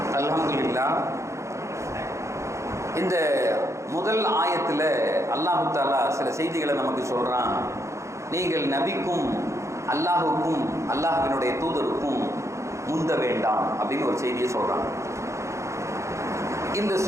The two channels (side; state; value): left; late; 0.14 ms